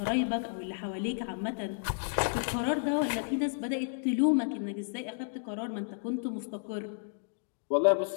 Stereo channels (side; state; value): right; silent; digital silence